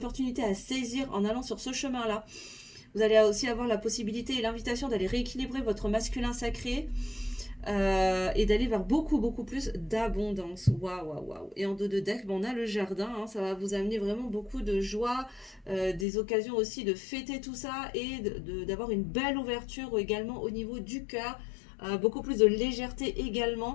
à saisir en allant sur ce chemin-là. Vous allez aussi avoir la possibilité et l'invitation d'aller rééquilibrer votre masculin sacré, et d'aller vers beaucoup beaucoup plus d'abondance. Waouh, waouh, waouh. Et en dos de deck, on a le jardin, hein, ça va vous amener vraiment beaucoup de joie, des occasions aussi de fêter tout ça et d'avoir une belle ouverture également au niveau du cœur, beaucoup plus de légèreté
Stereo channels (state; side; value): drops out; right; at 16.1 s